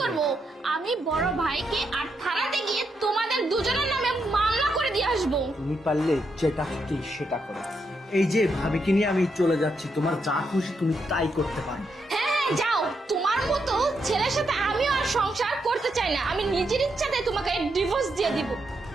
করব? আমি বড় ভাইকে আর থানাতে গিয়ে তোমাদের দুজনের নামে মামলা করে দিয়ে আসবো। তুমি পারলে যেটা খুশি সেটা করো। এই যে ভাবিকে নিয়ে আমি চলে যাচ্ছি, তোমার যা খুশি তুমি তাই করতে পারো। হ্যাঁ, যাও। তোমার মতো ছেলের সাথে আমিও আর সংসার করতে চাই না। আমি নিজের ইচ্ছাতে তোমাকে ডিভোর্স দিয়ে দিব।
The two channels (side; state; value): both; normal; correlation 0.81